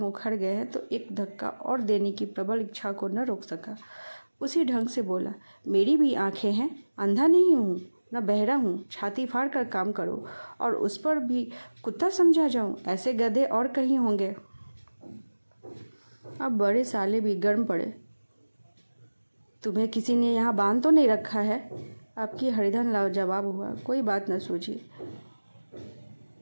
उखड़ गए हैं तो एक धक्का और देने की प्रबल इच्छा को न रोक सका। उसी ढंग से बोला, मेरी भी आंखें हैं, अंधा नहीं हूँ न बहरा हूँ। छाती फाड़ कर काम करो और उस पर भी कुत्ता समझा जाऊँ, ऐसे गधे और कहीं होंगे। अब बड़े साले भी गर्म पड़े। तुम्हें किसी ने यहाँ बांध तो नहीं रखा है? आपकी हरिधन लाजवाब हुआ, कोई बात न सूझी।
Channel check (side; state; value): both; inverted; correlation -1.00